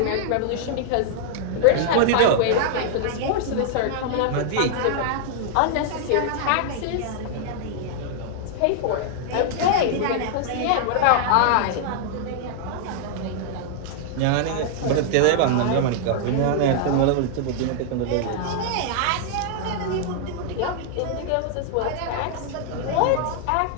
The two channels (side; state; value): both; different; correlation -0.01